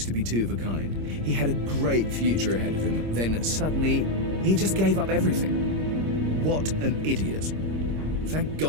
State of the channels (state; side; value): late; left; 26 ms